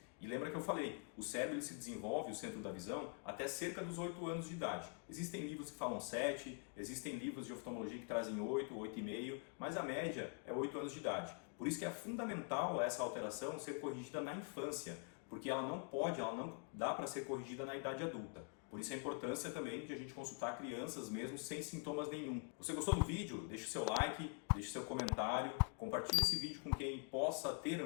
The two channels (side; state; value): right; quieter; 38.7 dB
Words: E lembra que eu falei, o cérebro ele se desenvolve, o centro da visão, até cerca dos 8 anos de idade. Existem livros que falam 7, existem livros de oftalmologia que trazem 8, 8,5, mas a média é 8 anos de idade. Por isso que é fundamental essa alteração ser corrigida na infância, porque ela não dá para ser corrigida na idade adulta. Por isso a importância também de a gente consultar crianças mesmo sem sintomas nenhum. Você gostou do vídeo? Deixe o seu like, deixe o seu comentário, compartilhe esse vídeo com quem possa ter